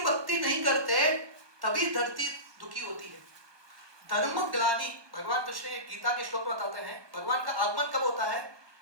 भक्ति नहीं करते तभी धरती दुखी होती है। धर्म ग्लानि, भगवान कृष्ण गीता के श्लोक बताते हैं, भगवान का आगमन कब होता है?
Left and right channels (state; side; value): late; left; 1.2 ms